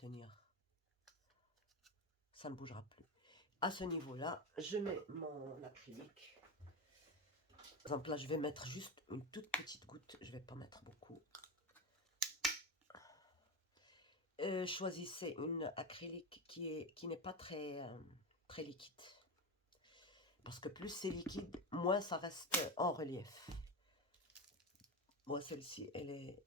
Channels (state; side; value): normal; both; correlation 0.19